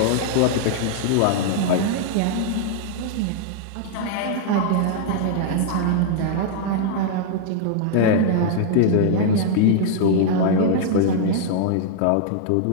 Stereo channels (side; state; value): both; different; correlation -0.01